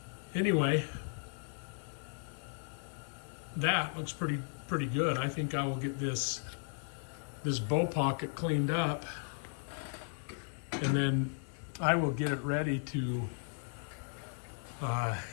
anyway, that looks pretty good. I think I will get this bow pocket cleaned up, and then I will get it ready to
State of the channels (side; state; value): right; silent; 54 dB below the other